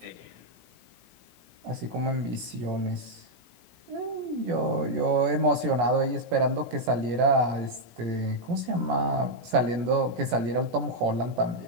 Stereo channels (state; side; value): late; left; 17 ms